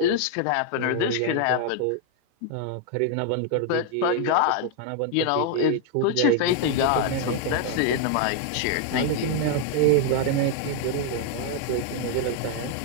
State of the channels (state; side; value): different; both; correlation 0.00